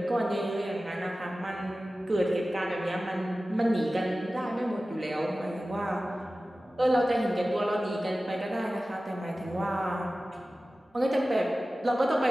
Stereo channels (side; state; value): both; normal; correlation 0.96